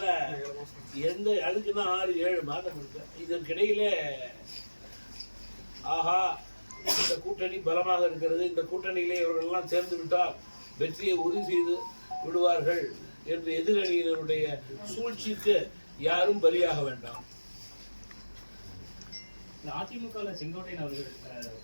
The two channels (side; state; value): both; inverted; correlation -1.00